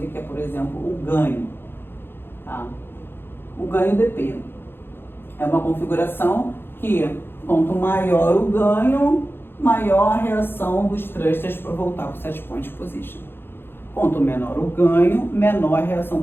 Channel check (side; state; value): right; late; 0.10 ms